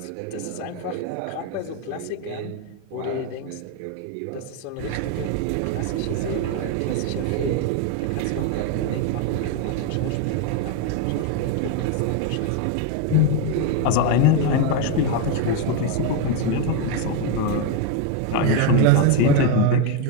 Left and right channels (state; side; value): different; both; correlation 0.02